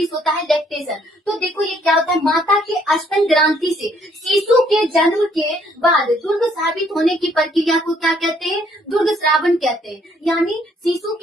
होता है लैक्टेशन। तो देखो ये क्या होता है, माता के स्तन ग्रंथि से शिशु के जन्म के बाद दुर्ग साबित होने की प्रक्रिया को क्या कहते हैं, दुर्ग श्रावण कहते हैं। यानी शिशु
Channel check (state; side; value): normal; both; correlation 0.66